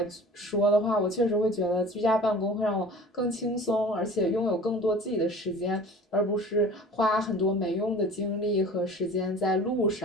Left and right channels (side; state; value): both; normal; correlation 0.43